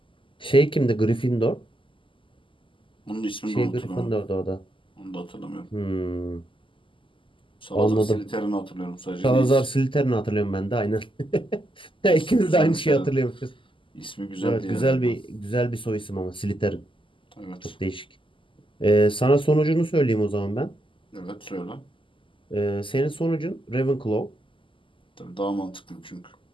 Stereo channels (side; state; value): right; late; 0.25 ms